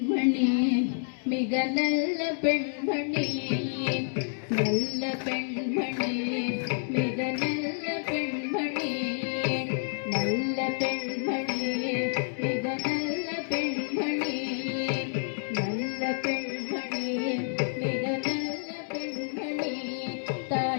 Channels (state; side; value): silent; right; 59 dB below the other